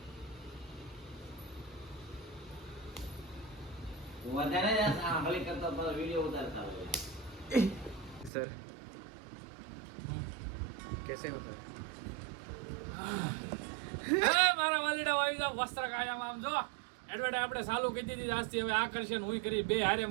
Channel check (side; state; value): left; drops out; at 8.3 s